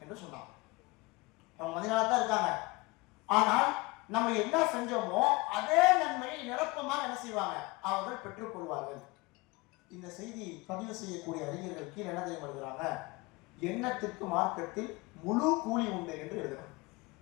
என்று சொன்னாங்க. அவங்க மதீனாவில் தான் இருக்காங்க, ஆனால் நம்ம என்ன செஞ்சோமோ அதே நன்மையை நிரப்பமாக என்ன செய்வாங்க, அவர்கள் பெற்றுக்கொள்வார்கள். இந்த செய்தி பதிவு செய்யக்கூடிய அறிஞர்கள் கீழே என்ன தெரியும் எழுதுறாங்க, எண்ணத்திற்கு மார்க்கத்தில் முழு கூலி உண்டு என்று எழுதுறாங்க.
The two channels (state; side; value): quieter; right; 23.3 dB